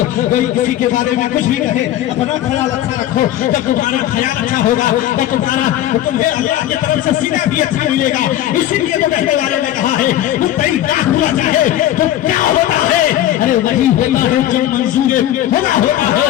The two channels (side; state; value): right; quieter; 12.7 dB